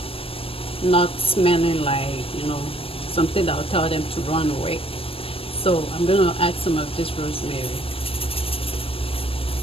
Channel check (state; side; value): late; right; 0.27 ms